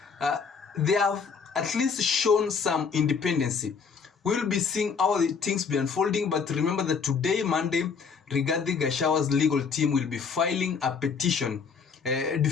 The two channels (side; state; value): right; quieter; 5.7 dB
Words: They have at least shown some independency. We'll be seeing how the things be unfolding, but remember that today, Monday, Rigathi Gachagua's legal team will be filing a petition,